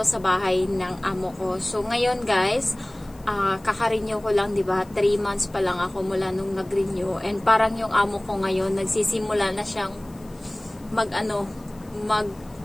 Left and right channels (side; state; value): left; noise; hiss, 27 dB below the sound